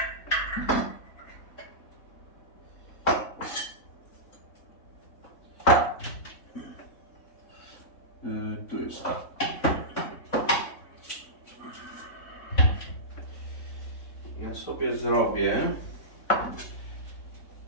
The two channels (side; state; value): right; late; 3.6 ms